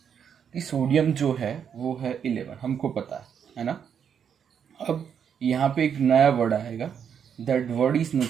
कि सोडियम जो है वो है 11, हमको पता है ना। अब यहाँ पे एक नया वर्ड आएगा, that word is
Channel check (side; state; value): left; quieter; 7.8 dB